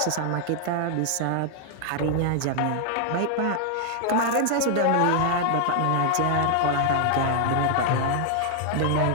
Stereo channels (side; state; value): both; different; correlation 0.00